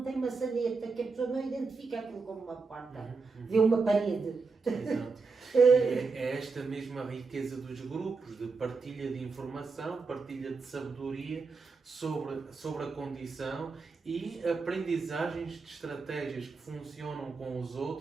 tem maçaneta, que a pessoa não identifica aquilo como uma porta, vê uma parede. Exato. É esta mesma riqueza dos grupos, de partilha de informação, partilha de sabedoria sobre a condição e aprendizagens de estratégias que funcionam com os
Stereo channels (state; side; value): quieter; left; 4.5 dB